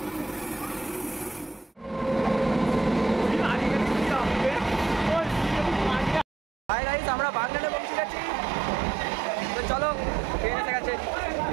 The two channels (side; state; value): left; drops out; at 6.2 s